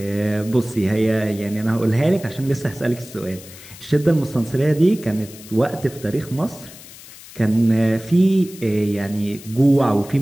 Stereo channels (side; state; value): left; noise; hiss, 18 dB below the sound